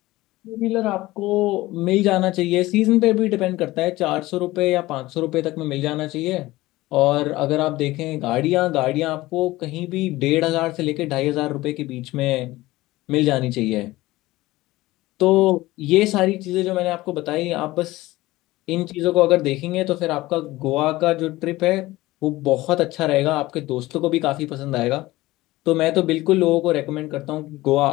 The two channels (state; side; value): quieter; right; 18.4 dB